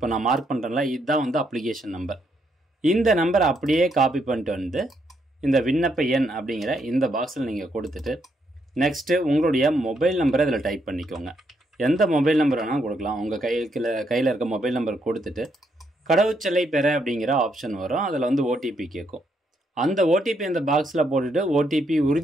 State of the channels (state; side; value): normal; both; correlation 0.76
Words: நான் மார்க் பண்ணுறேன்ல, இதுதான் அப்ளிகேஷன் நம்பர். இந்த நம்பரை அப்படியே காப்பி பண்ணிட்டு இந்த விண்ணப்ப எண் அப்படிங்கிற இந்த பாக்ஸில் நீங்கள் கொடுத்துட்டு நெக்ஸ்ட்டு உங்களுடைய மொபைல் நம்பரை இதில் டைப் பண்ணிக்கோங்க. எந்த மொபைல் நம்பர் வேணாலும் கொடுக்கலாம். உங்கள் கையில் இருக்க மொபைல் நம்பர் கொடுத்துட்டு கடவுச்சொல்லை பெற அப்படிங்கிற ஆப்ஷன் வரும். அதில் ஓடிபி கேட்கும். அந்த ஓடிபி அந்த பாக்ஸில் போட்டுட்டு ஓடிபி